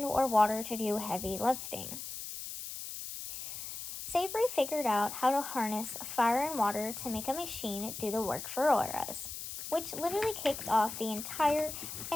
or water to do heavy lifting. Savery figured out how to harness fire and water to make a machine do the work for us, which literally kicked off the entire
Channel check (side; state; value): left; noise; hiss, 8 dB below the sound